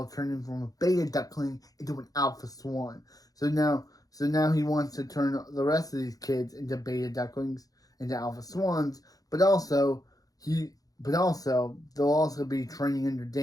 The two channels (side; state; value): right; late; 0.18 ms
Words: turned him from a beta duckling into an alpha swan. So now he wants to turn the rest of these kids into beta ducklings, into alpha swans. But also they'll also be training under